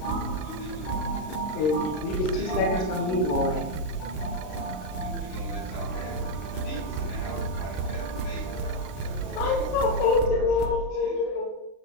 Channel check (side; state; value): right; late; 32 ms